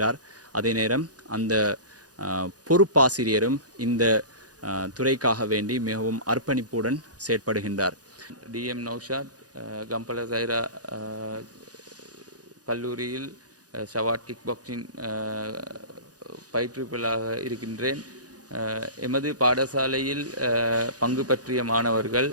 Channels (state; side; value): late; left; 0.68 ms